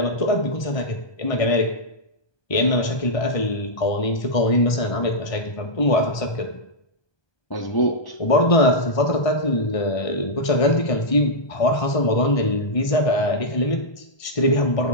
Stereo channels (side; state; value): right; late; 1.2 ms